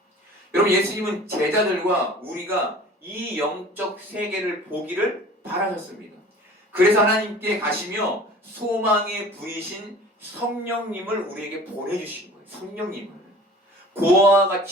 여러분, 예수님은 제자들과 우리가 이 영적 세계를 보기를 바라셨습니다. 그래서 하나님께 가시며 소망의 불이신 성령님을 우리에게 보내주신 거예요. 성령님을 고아와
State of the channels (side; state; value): both; normal; correlation 0.44